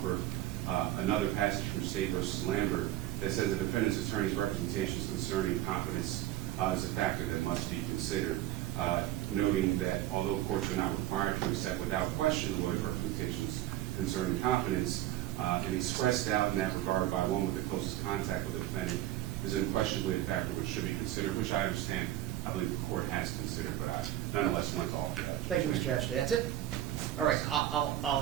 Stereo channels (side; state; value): left; quieter; 13.9 dB